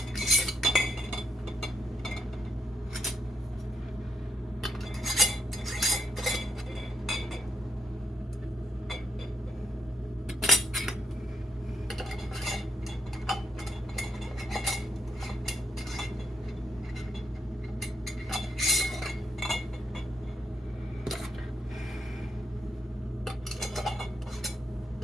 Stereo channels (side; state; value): both; normal; correlation 0.75